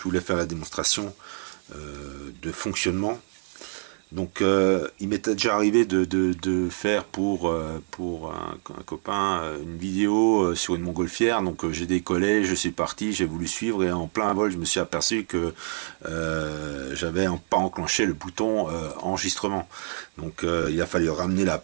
voulais faire la démonstration de fonctionnement. Donc il m'était déjà arrivé de faire pour un copain une vidéo sur une montgolfière. Donc j'ai décollé, je suis parti, j'ai voulu suivre et en plein vol je me suis aperçu que j'avais pas enclenché le bouton enregistrement. Donc il a fallu ramener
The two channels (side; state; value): left; silent; digital silence